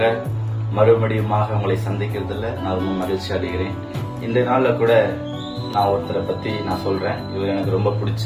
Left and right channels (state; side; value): identical; both; correlation 1.00